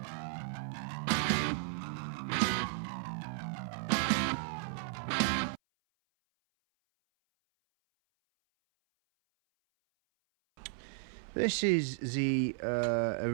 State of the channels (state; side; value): silent; left; 55 dB below the other